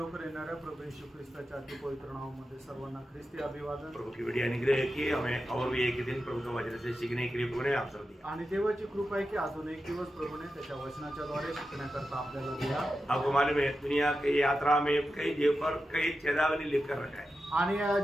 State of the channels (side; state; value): both; normal; correlation 0.90